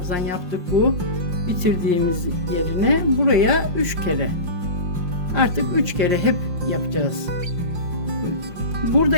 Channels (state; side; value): late; left; 5.6 ms